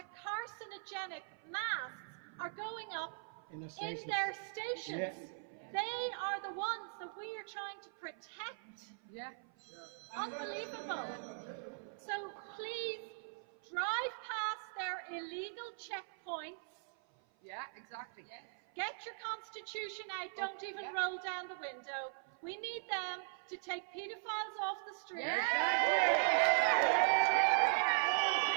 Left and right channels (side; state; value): left; silent; 51 dB below the other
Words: carcinogenic masks are going up in their stations. They are the ones that we are trying to protect. Yeah. Unbelievable. So please drive past their illegal checkpoints. Yeah, exactly. Yes. Get your constitution out. Don't even roll down the window. We need them to take paedophiles off the street. They